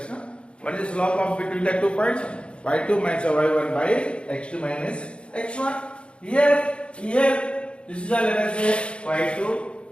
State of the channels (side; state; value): right; late; 0.057 ms